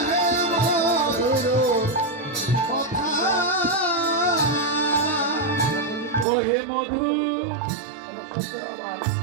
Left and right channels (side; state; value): left; drops out; at 6.2 s